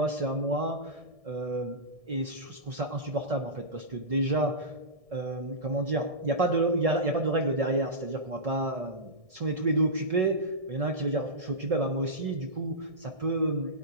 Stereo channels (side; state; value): left; late; 1.7 ms